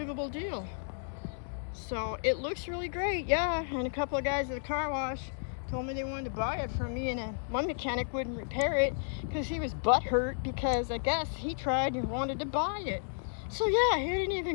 deal. So it looks really great, yeah. And a couple of guys at the car wash told me they wanted to buy it from me, and one mechanic wouldn't repair it because he was butthurt because I guess he tried and wanted to buy it. So yeah, he didn't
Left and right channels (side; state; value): right; silent; digital silence